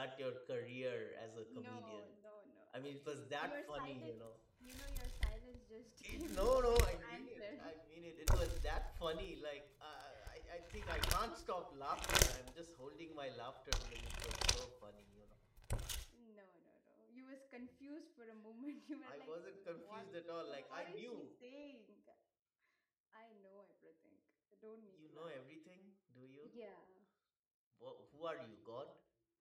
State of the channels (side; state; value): both; identical; correlation 1.00